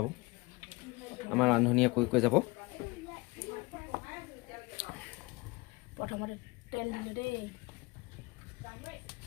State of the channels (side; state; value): right; quieter; 24.4 dB